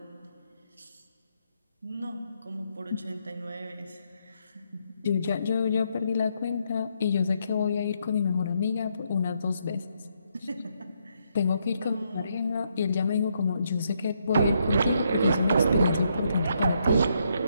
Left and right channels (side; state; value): both; inverted; correlation -0.76